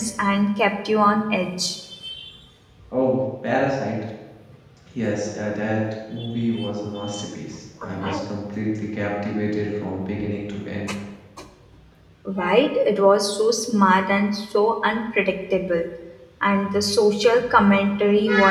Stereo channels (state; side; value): identical; both; correlation 1.00